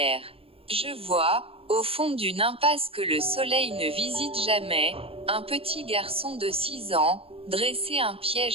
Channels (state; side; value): late; left; 0.27 ms